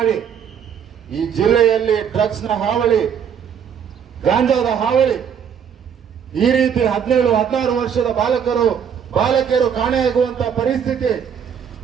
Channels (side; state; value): left; quieter; 7.9 dB